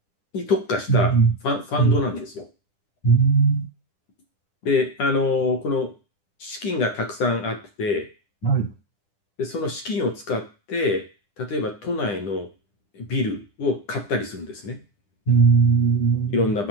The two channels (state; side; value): late; right; 10 ms